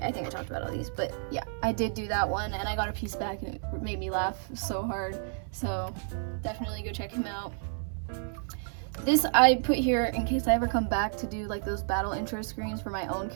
I think I talked about all these, but yeah, I did do that one, and I got a piece back, and it made me laugh so hard. So definitely go check him out. This I put here in case I ever come back to do like those battle intro screens for my own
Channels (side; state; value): left; silent; 57 dB below the other